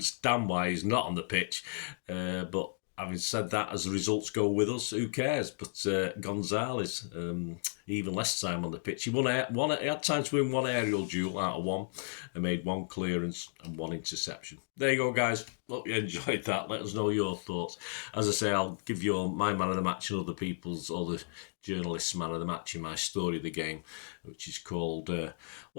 why he's not on the pitch, but having said that, as the results go with us, who cares? But Gonzalez, even less time on the pitch. He had time to win 1 aerial duel out of 1 and made 1 clearance and 1 interception. There you go, guys. Hope you enjoyed that. Let us know your thoughts. As I say, I'll give you my man of the match and other journalists' man of the match in my story of the game, which is called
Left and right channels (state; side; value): silent; right; digital silence